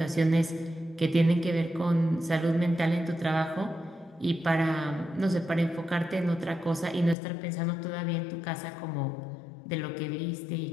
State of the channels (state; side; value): drops out; right; at 7.2 s